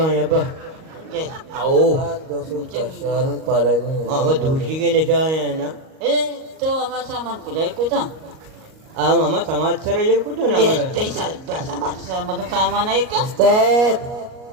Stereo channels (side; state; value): left; late; 38 ms